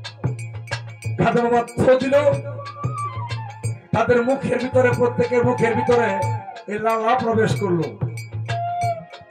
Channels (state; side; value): identical; both; correlation 1.00